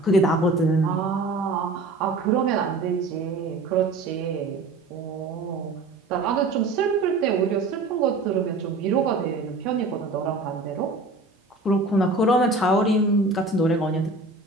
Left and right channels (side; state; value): left; quieter; 3.2 dB